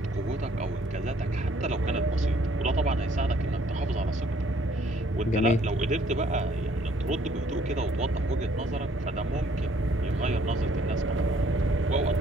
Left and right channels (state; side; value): normal; both; correlation 0.63